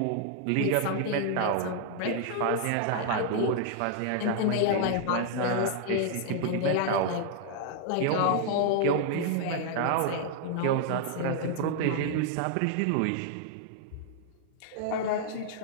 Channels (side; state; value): both; different; correlation 0.00